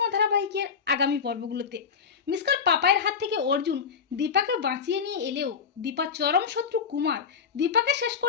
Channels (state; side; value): quieter; right; 6.4 dB